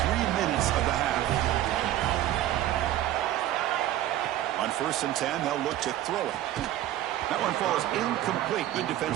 3 minutes of the half. On 1st and 10, they'll look to throw it. That one falls incomplete. Good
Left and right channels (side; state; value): left; quieter; 13.3 dB